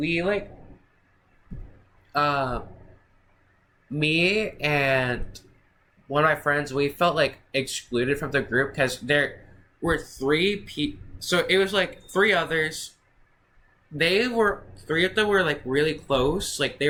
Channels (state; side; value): identical; both; correlation 1.00